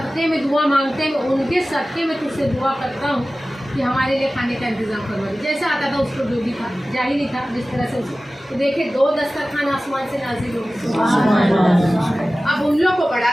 में दुआ मांगते हैं, उनके सदक़े में तुझसे दुआ करता हूँ कि हमारे लिए खाने का इंतज़ाम करवा दे। जैसा आता था उसको जो भी था, जाहिल ही था जिस तरह से उसको, तो देखे 2 दस्तरखान आसमान से नाज़िल हो गए। अब उन लोग को बड़ा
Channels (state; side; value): normal; both; correlation 0.96